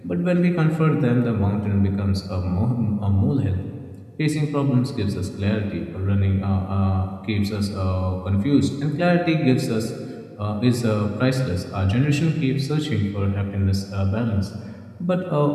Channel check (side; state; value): both; identical; correlation 1.00